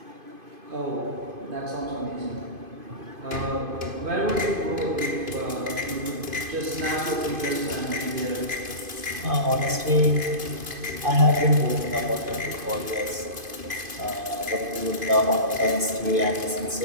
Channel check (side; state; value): left; late; 2.5 ms